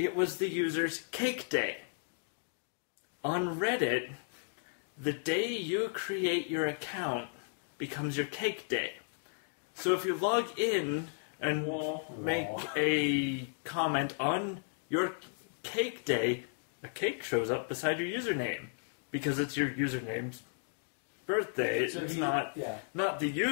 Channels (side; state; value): right; silent; digital silence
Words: was the user's cake day. On Reddit, the day you create your account becomes your cake day. So if you log in and make a comment on your cake day, a cake shows up beside your username because it's your username's birthday. So it's not the